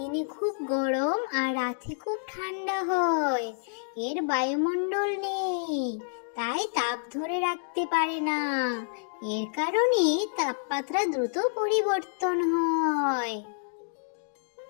খুব গরম আর রাতে খুব ঠান্ডা হয়। এর বায়ুমণ্ডল নেই, তাই তাপ ধরে রাখতে পারে না। এর কারণে তাপমাত্রা দ্রুত পরিবর্তন হয়।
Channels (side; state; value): right; silent; digital silence